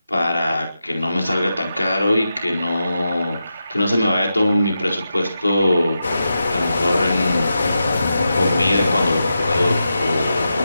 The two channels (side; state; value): both; inverted; correlation -0.89